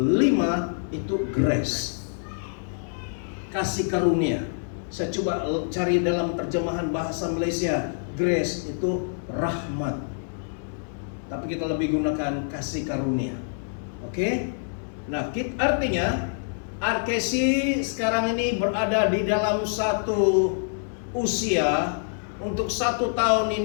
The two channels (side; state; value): right; silent; digital silence